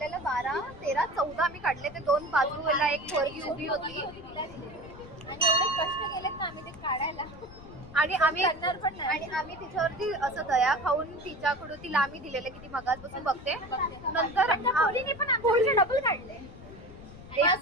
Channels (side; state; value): left; noise; rumble, 18 dB below the sound